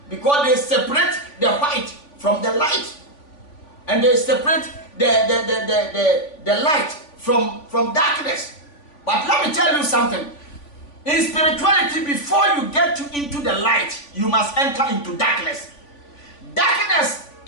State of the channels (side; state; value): right; late; 3.5 ms